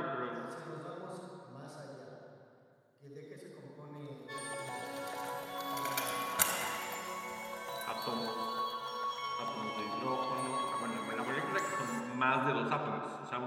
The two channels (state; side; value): identical; both; correlation 1.00